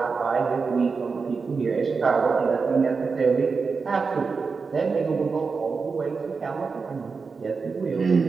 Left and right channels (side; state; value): left; quieter; 4.9 dB